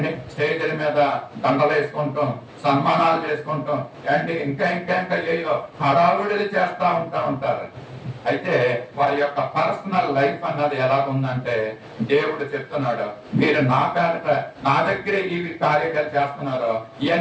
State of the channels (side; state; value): both; identical; correlation 1.00